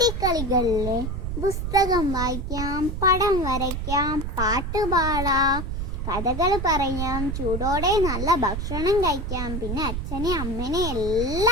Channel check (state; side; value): noise; right; rumble, 3 dB below the sound